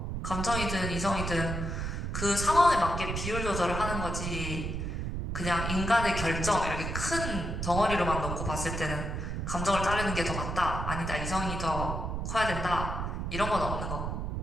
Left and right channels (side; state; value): right; noise; rumble, 3 dB below the sound